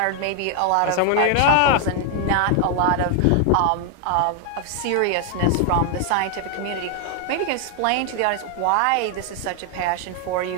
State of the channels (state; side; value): different; both; correlation 0.00